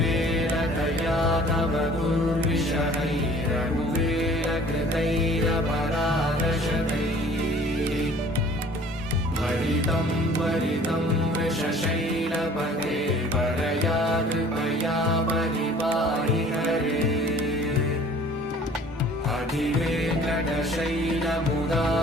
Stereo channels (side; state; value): both; normal; correlation 0.51